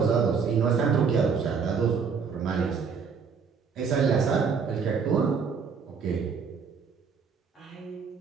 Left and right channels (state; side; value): quieter; left; 5.9 dB